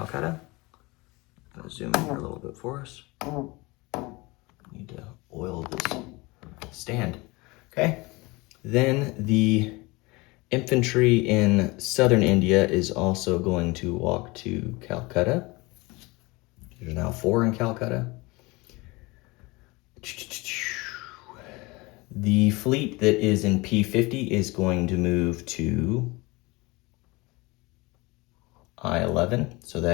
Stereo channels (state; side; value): quieter; right; 24.2 dB